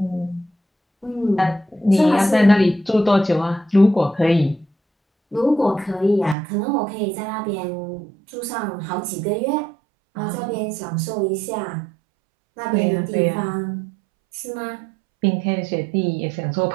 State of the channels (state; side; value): drops out; left; at 6.4 s